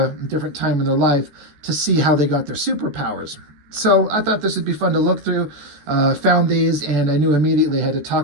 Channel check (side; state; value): left; late; 14 ms